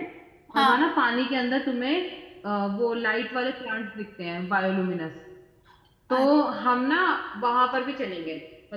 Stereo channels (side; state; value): both; identical; correlation 1.00